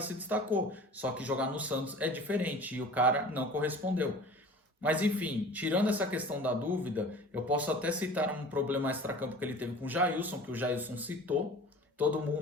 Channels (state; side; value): normal; both; correlation 0.42